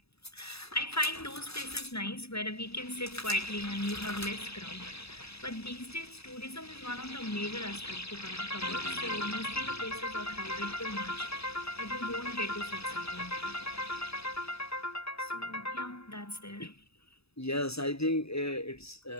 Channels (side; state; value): right; late; 0.78 ms